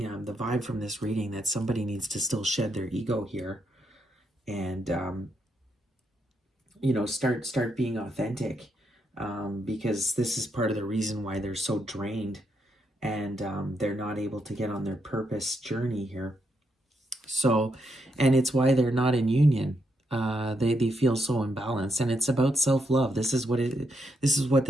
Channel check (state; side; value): normal; both; correlation 0.80